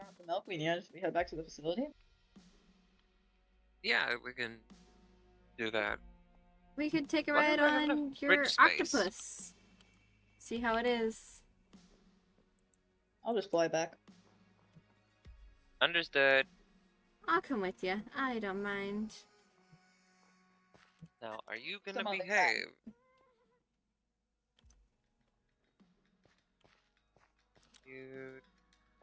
have the milk we need. We head back to the facility. Yeah, we can do that. We could take a Wonder ride if I have enough on your fridge space. octopus. See how it is. I'll just fly back. Understood. I'll come with you. I don't mind. Now, are you gonna Some other time. behave? You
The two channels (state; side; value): identical; both; correlation 1.00